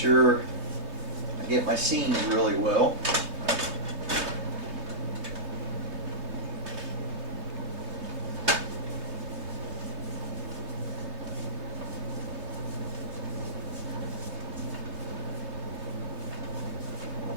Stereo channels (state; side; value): late; left; 3.2 ms